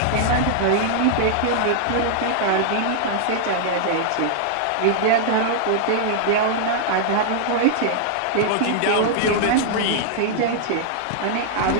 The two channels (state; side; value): different; both; correlation -0.01